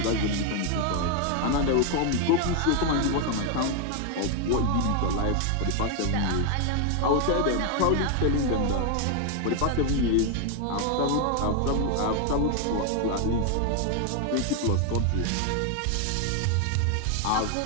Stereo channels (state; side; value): different; both; correlation 0.01